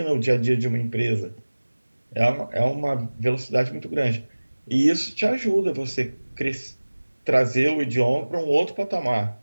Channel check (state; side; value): inverted; both; correlation -1.00